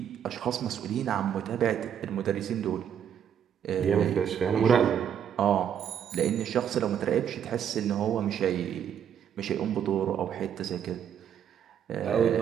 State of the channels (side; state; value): left; quieter; 8.9 dB